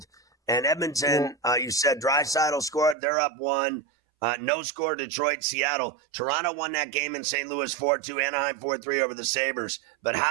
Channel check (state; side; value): drops out; left; at 3.0 s